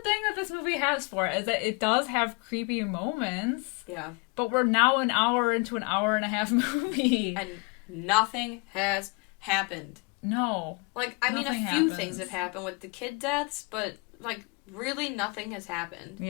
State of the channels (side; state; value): right; quieter; 31.3 dB